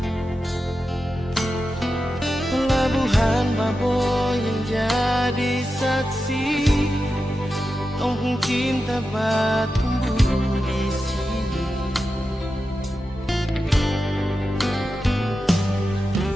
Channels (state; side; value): normal; both; correlation 0.91